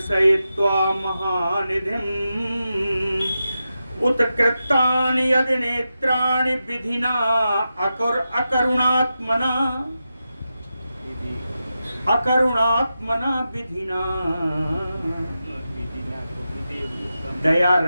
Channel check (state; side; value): inverted; both; correlation -0.90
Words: महानिधिम् उत्कृतानि यदि नेत्राणि विधिना अकरुणात्मना विधिना, दया